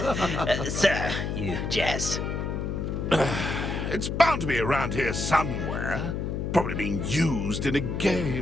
Sir, you jest. It's bound to be around here somewhere. Probably being used in a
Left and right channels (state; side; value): noise; left; hum, 2 dB below the sound